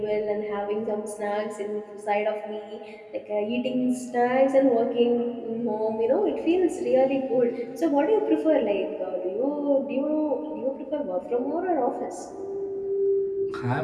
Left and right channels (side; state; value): both; identical; correlation 1.00